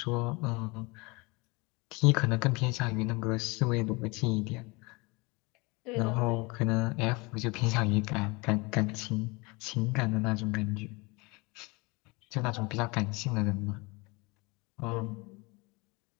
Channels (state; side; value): quieter; right; 26.4 dB